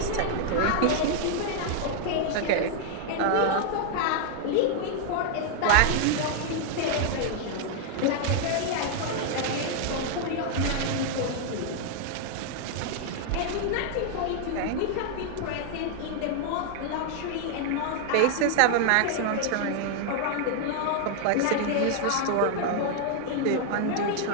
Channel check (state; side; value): different; both; correlation 0.00